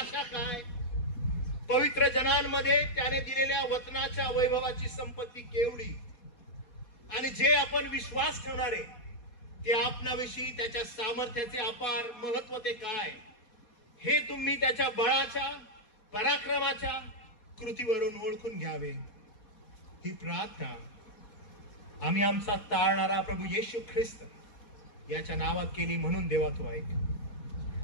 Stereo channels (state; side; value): late; right; 4.2 ms